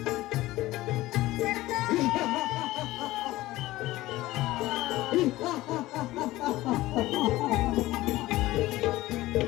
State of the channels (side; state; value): right; quieter; 17.4 dB